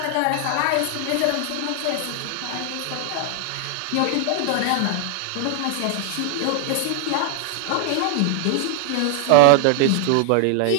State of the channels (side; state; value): both; different; correlation 0.00